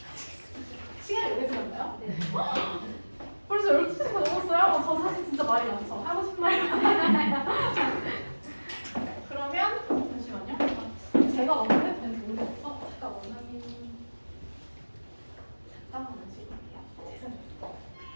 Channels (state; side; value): inverted; both; correlation -1.00